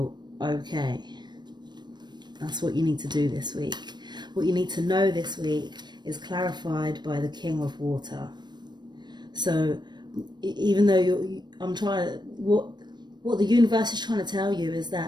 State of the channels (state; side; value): late; left; 0.21 ms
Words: okay. That's what you need to do this week. What you need to know this week is clarified by the King of Water. So even though what the universe is trying to tell you is